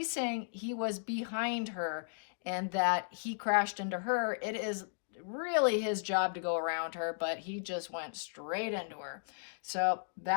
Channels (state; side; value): silent; right; digital silence